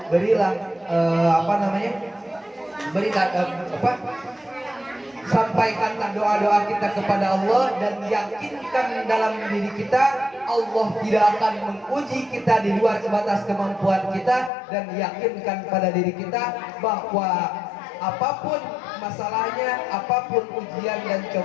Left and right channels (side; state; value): right; drops out; at 14.5 s